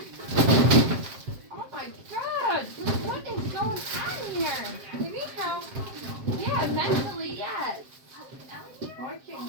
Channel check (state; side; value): late; left; 7.6 ms